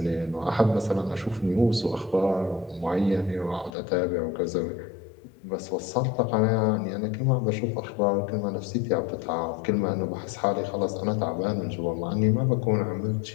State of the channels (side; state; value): right; drops out; at 3.7 s